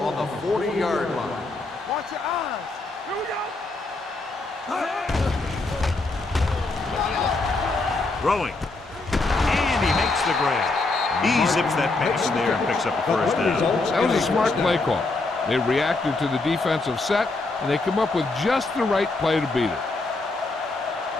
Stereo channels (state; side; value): quieter; right; 3.3 dB